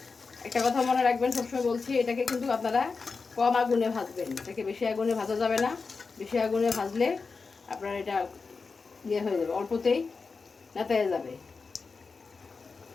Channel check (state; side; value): quieter; right; 4.6 dB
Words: একটা কথা মনে রাখবেন, সবসময় বলছি, এটাকে কিন্তু আপনারা কম আগুনে ভাজবেন, এটাকে বেশি আগুনে ভাজা যাবে না। বেশি আগুনে ভাজলে আপনার এটা ইয়ে হয়ে যাবে, অল্পতেই নেতায়ে যাবে।